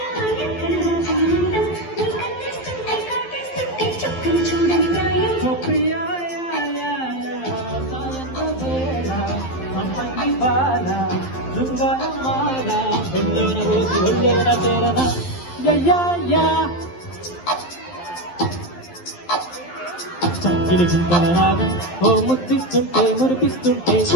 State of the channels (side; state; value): right; late; 12 ms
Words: చక్కిలి గుంటల రాగం ఓ ముద్దిస్తుంటే మురిపిస్తుంటే